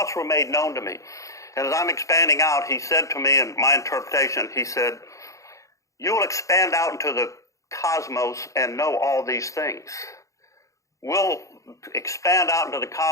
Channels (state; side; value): late; right; 0.15 ms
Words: were made known to me. And as I'm expanding out, he said to me, in my interpretation, he said, you will expand out into the cosmos and know all these things. We'll expand out into the